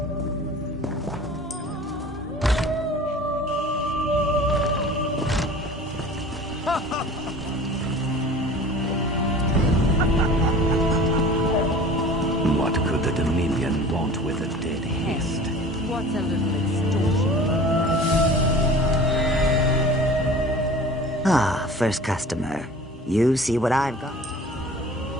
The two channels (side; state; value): both; normal; correlation 0.42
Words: What could the Dominion want with a dead Hist? What's a little extortion? Ah, first customer. You see what I've got?